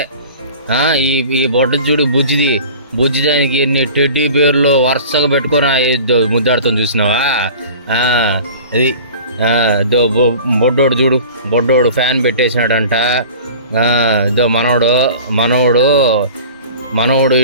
ఈ ఈ బొడ్డ చూడు బుజ్జిది, బుజ్జి దానికి ఎన్ని టెడ్డీ బేర్లు వరుసగా పెట్టుకొని ముద్దాడుతాం చూసినావా. అది బొడ్డోడు చూడు, బొడ్డోడు ఫ్యాన్ పెట్టేసినాడంట. ఇదో మనోడు మనోడు మనోడు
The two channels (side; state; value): both; inverted; correlation -0.41